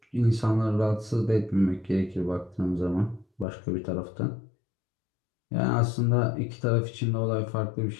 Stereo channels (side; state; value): right; drops out; at 3.5 s